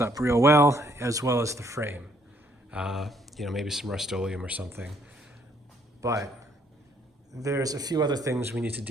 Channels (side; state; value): both; normal; correlation 0.67